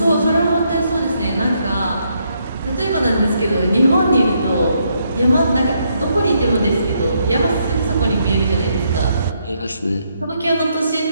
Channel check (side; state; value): both; inverted; correlation -0.75